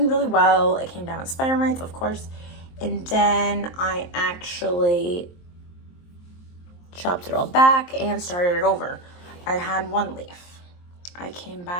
really well. It came down with spider mites, of course. And then I actually chopped it all back and started it over. I had one leaf. I came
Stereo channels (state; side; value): late; right; 23 ms